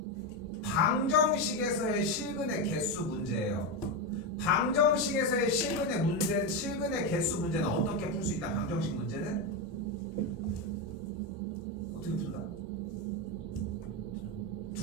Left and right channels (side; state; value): both; normal; correlation 0.10